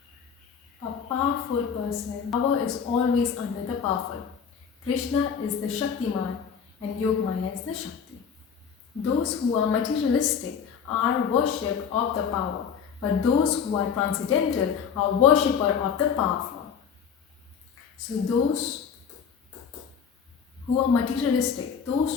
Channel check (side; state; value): right; quieter; 7.0 dB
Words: A powerful person, power is always under the powerful. Krishna is the Shaktiman and Yogmaya is the Shakti. Those who are materialistic are worship of the power, but those who are transcendental are worshipper of the powerful. So those who are materialistic, those